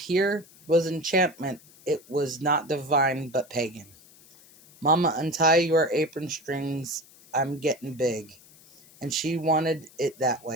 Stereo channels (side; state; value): left; noise; hiss, 25 dB below the sound